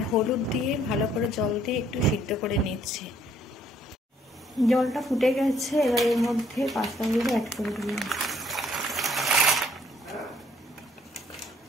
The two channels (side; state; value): both; normal; correlation 0.64